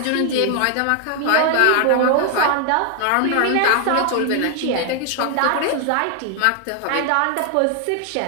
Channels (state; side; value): different; both; correlation 0.00